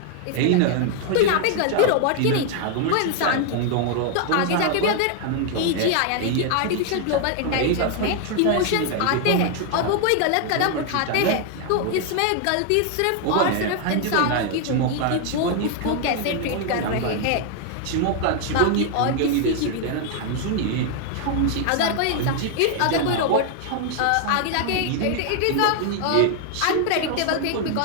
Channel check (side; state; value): both; different; correlation 0.00